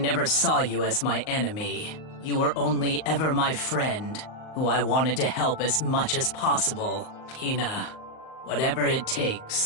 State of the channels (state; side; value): late; right; 38 ms